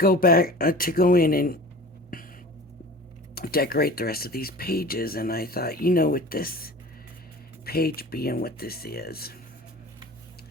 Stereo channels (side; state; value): both; normal; correlation 0.39